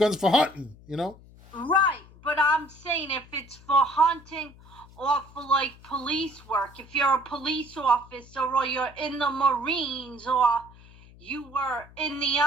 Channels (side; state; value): left; noise; hum, 22 dB below the sound